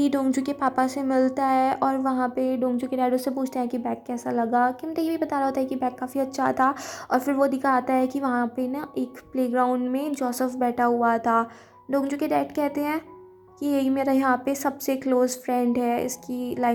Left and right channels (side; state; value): both; identical; correlation 1.00